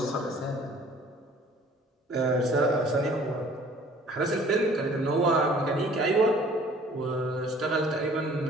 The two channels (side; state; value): both; normal; correlation 0.53